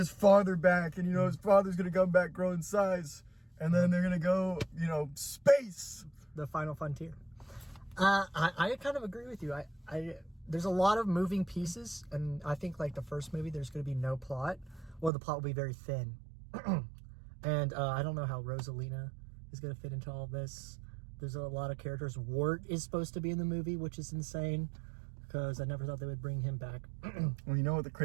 father back, and, his father's going to come back, grow in size, and then they're going to go, space. The final frontier. I kind of agree with you. There's a lot of moving pieces, and I think, like, the first movie, there's going to be no plot, or the plot will be very thin. And I don't know how Rosalina is going to fit into all of this. There's a lot of characters. Wart is supposed to be in the movie, which is insane, because I never thought they would bring him back. Well, you know what the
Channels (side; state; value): left; drops out; at 15.1 s